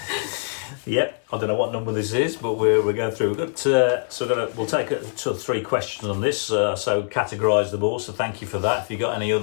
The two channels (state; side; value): silent; right; 57 dB below the other